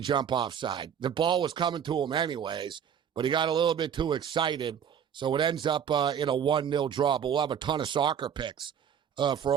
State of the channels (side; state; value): left; quieter; 8.3 dB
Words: offside. The ball was coming to him anyways, but he got a little bit too excited. So it ends up in a 1-0 draw. But we'll have a ton of soccer picks for